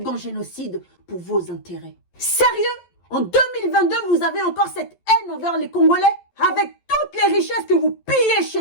génocide pour vos intérêts. Sérieux? En 2022, vous avez encore cette haine envers les Congolais? Avec toutes les richesses que vous pillez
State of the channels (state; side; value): late; right; 11 ms